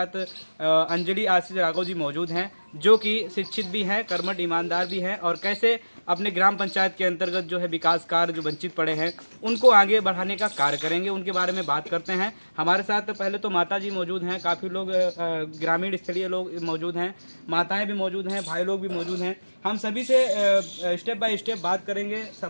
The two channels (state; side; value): inverted; both; correlation -1.00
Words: अंजलि आशीष राघव जी मौजूद हैं, जो कि शिक्षित भी हैं, कर्मठ ईमानदार भी हैं, और कैसे अपने ग्राम पंचायत के अंतर्गत जो है विकास कार्य जो वंचित पड़े हैं उनको आगे बढ़ाने का कार्य करेंगे। उनके बारे में बात करते हैं। हमारे साथ पहले तो माता जी मौजूद हैं, काफ़ी लोग ग्रामीण स्थलीय लोग मौजूद हैं, माताएं भी मौजूद हैं, भाई लोग भी मौजूद हैं। हम सभी से स्टेप बाय स्टेप बात करेंगे,